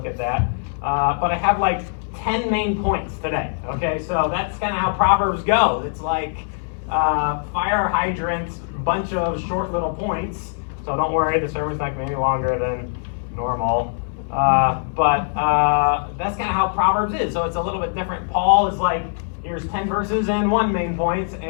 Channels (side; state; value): right; silent; digital silence